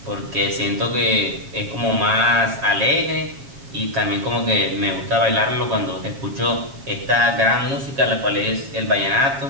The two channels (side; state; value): left; late; 7.3 ms